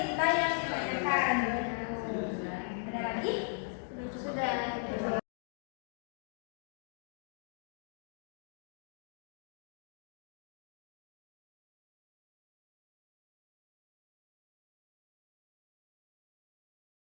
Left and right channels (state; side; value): silent; right; digital silence